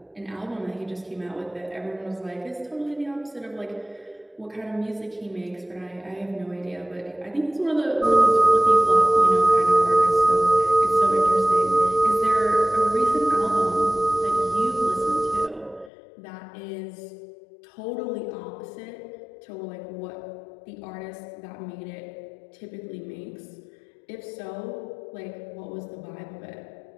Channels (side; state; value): right; drops out; at 15.9 s